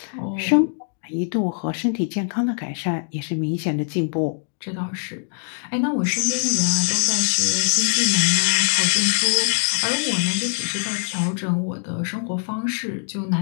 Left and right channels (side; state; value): right; silent; 64 dB below the other